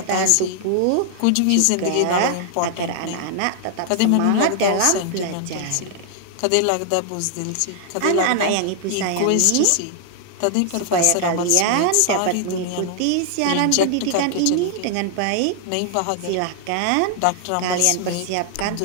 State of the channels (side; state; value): both; different; correlation 0.00